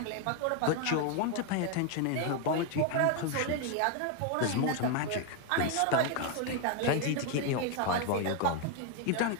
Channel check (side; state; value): both; different; correlation 0.01